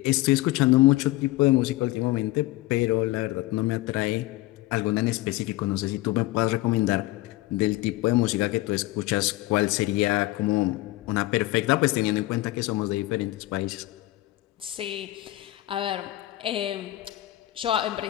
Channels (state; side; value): quieter; right; 17.9 dB